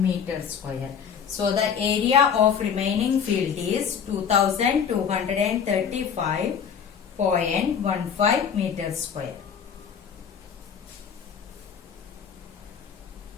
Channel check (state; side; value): quieter; right; 7.3 dB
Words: meter square. So the area of remaining field is 2235.15 meter square.